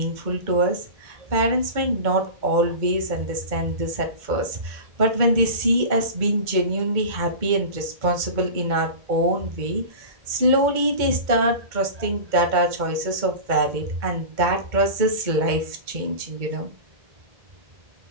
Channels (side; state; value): left; late; 2.1 ms